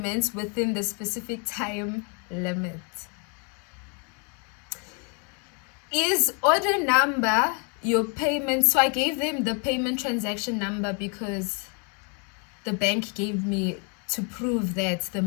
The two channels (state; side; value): quieter; right; 37.2 dB